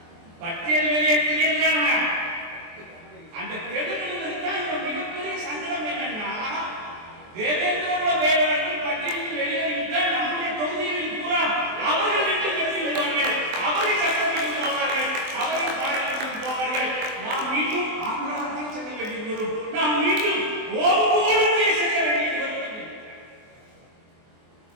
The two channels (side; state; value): left; late; 23 ms